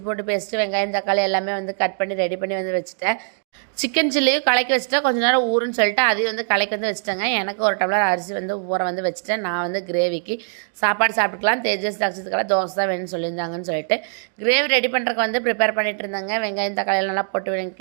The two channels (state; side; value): silent; left; digital silence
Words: போட்டு பேஸ்ட்டு வெங்காயம் தக்காளி எல்லாமே வந்து கட் பண்ணி ரெடி பண்ணி வந்து வச்சுட்டேன். சிக்கன் சில்லியும் கலக்கி வச்சுட்டா கொஞ்சம் நேரம் ஊறுன்னு சொல்லிட்டு அதையும் வந்து கலக்கி வந்து வச்சுட்டேங்க. எனக்கு ஒரு டம்ளர் அரிசி வந்து ஊற வந்து வச்சுட்டேன். நான் வந்து கிரேவிக்கு சாப்பாடு சாப்பிட்டுக்கலாம். தேஜஸ் தக்ஷத்துக்கெல்லாம் தோசை தான் வேணும்னு சொல்லியிருந்தாங்கன்னு சொல்லிட்டு கிரேவி ரெடி பண்ணுறதுக்கு வந்து ப்ரிப்பேர் பண்ணிட்டு இருந்தாங்க. வெங்காயம் தக்காளி நல்லா போட்டு